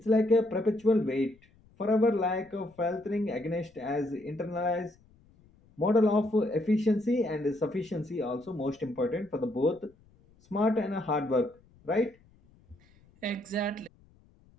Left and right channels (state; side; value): noise; left; rumble, 30 dB below the sound